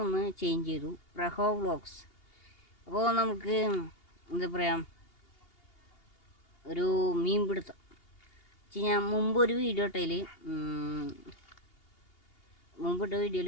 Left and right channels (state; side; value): late; right; 2.8 ms